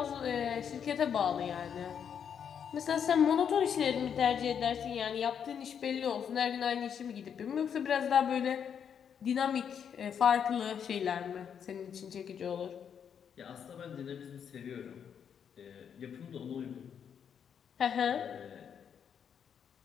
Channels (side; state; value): right; quieter; 7.8 dB